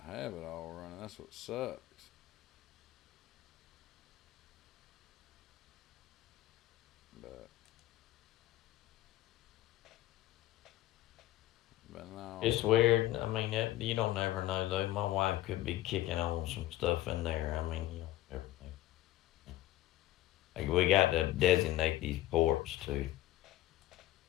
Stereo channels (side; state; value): right; quieter; 15.3 dB